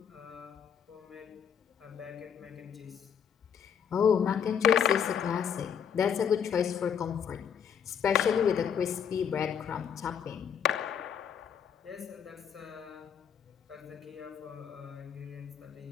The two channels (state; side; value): quieter; right; 7.8 dB